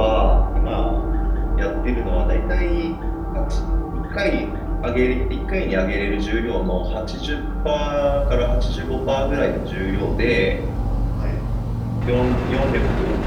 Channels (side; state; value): both; identical; correlation 1.00